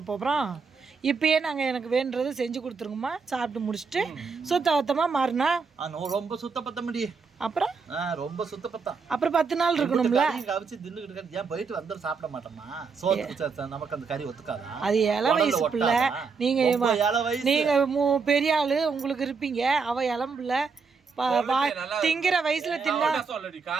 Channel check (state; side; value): quieter; left; 5.1 dB